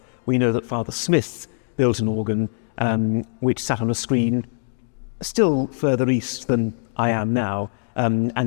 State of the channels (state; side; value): silent; right; digital silence